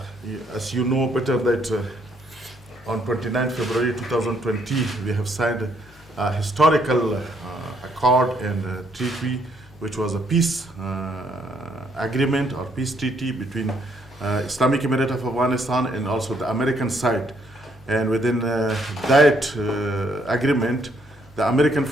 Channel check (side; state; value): both; normal; correlation 0.70